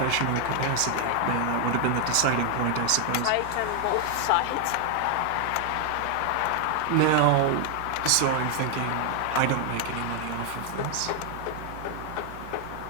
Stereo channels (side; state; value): both; different; correlation 0.00